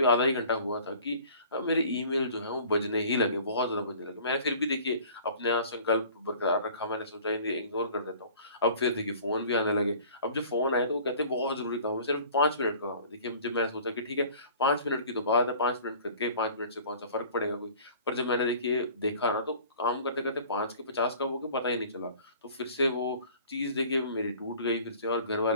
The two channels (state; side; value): inverted; both; correlation -0.48